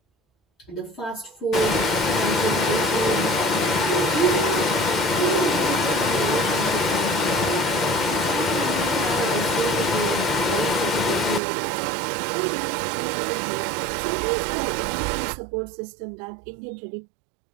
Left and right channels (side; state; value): left; drops out; at 11.4 s